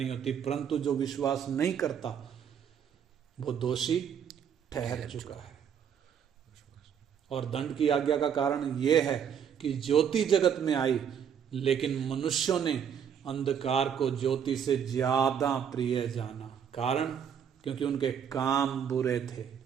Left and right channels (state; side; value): quieter; left; 8.1 dB